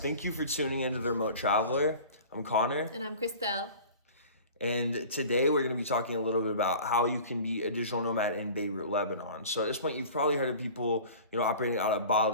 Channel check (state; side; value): inverted; both; correlation -0.41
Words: you for tuning into The Remote Traveler. I'm Connor. And I'm Christelle. And today we're going to be talking a little bit about how you can be a digital nomad in Beirut, Lebanon. So at this point, you've probably heard of people, operating out of